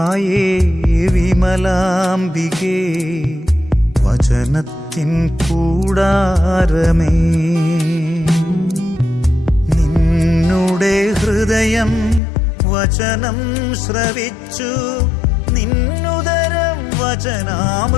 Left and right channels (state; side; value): drops out; right; at 12.2 s